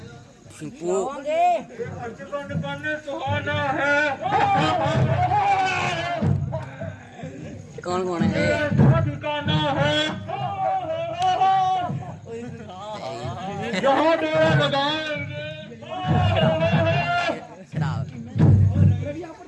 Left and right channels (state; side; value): identical; both; correlation 1.00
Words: सिंपू जीवन बन सुहाना है, कौन कौन है ठिकाना है, जहाँ डेरा लगाएंगे।